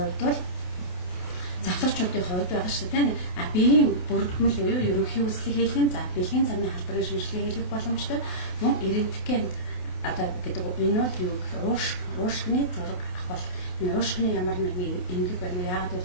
бол залуучуудын хувьд байгаа шүү дээ. Биеийн бүрдмэл буюу ерөнхий хүслийг хийх, за бэлгийн замын халдварын шинжилгээ хийх боломжтой. Мөн эрентген одоо гэдэг энэ бол юу гэх уушгины зураг авах. Энэ уушгины ямар нэгэн эмгэг байна уу? Яагаад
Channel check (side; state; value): right; late; 28 ms